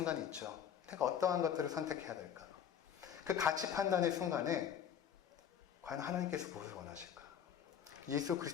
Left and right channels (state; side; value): quieter; right; 8.7 dB